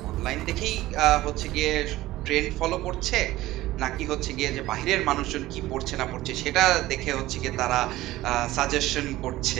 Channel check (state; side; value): quieter; left; 16.7 dB